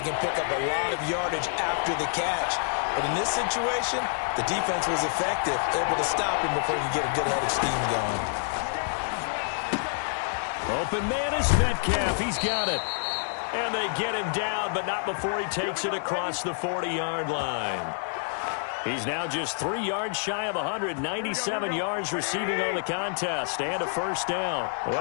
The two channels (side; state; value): right; silent; digital silence